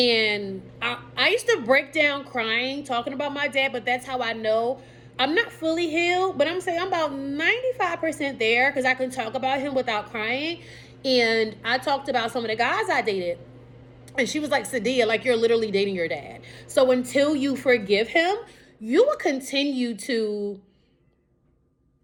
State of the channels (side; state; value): both; identical; correlation 1.00